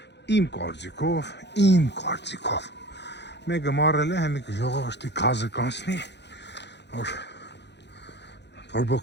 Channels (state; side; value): late; right; 0.50 ms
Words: Իմ կարծիքով Մեկը մարել է հեմիկ ժողովրդի գազը կանցնի որ